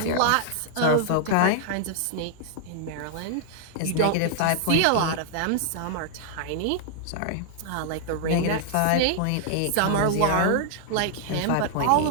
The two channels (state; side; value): different; both; correlation -0.01